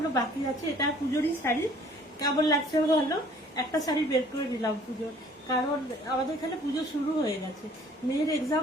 বাকি আছে। এটা পুজোরই শাড়ি, কেমন লাগছে ভালো। একটা শাড়ি বের করে নিলাম পুজোর, কারণ আমাদের এখানে পুজো শুরু হয়ে গেছে। মেয়ের এক্সাম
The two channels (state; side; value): normal; both; correlation 0.55